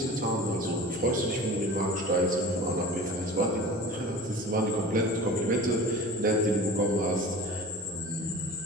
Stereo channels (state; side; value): normal; both; correlation 0.37